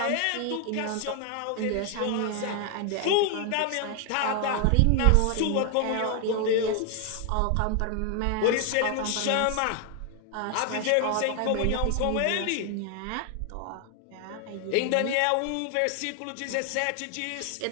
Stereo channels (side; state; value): both; different; correlation 0.00